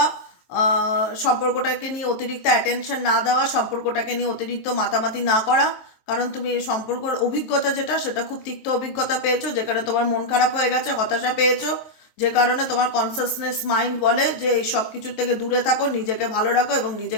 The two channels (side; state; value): right; late; 23 ms